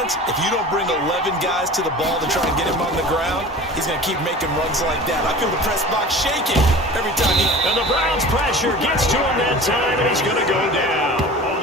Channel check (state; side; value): normal; both; correlation 0.39